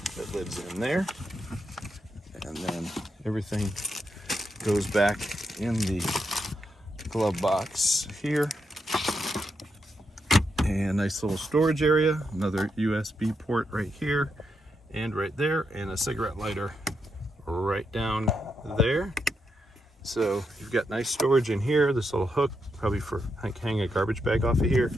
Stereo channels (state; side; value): normal; both; correlation 0.82